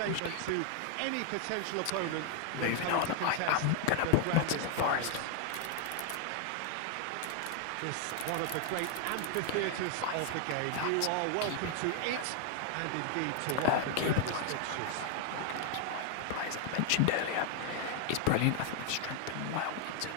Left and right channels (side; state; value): both; different; correlation 0.00